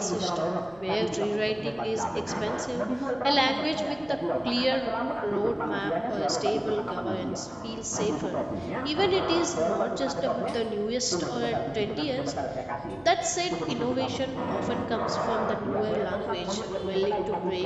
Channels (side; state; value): right; noise; hum, 26 dB below the sound